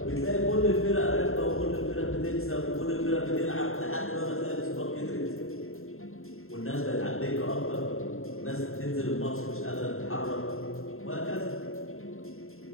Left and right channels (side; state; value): right; late; 0.61 ms